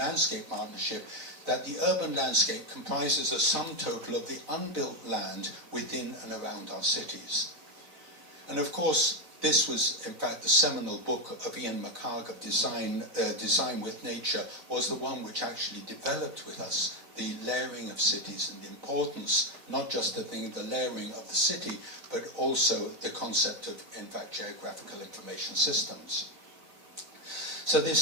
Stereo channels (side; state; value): left; late; 4.0 ms